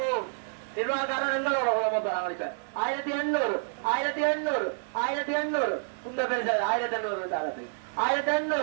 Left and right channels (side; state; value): left; silent; digital silence